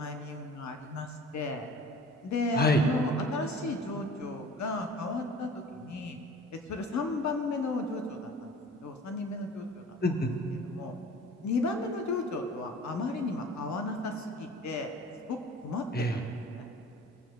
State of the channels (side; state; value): both; normal; correlation 0.44